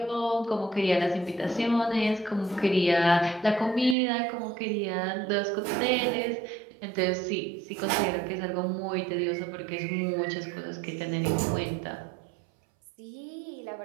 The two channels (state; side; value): drops out; left; at 4.0 s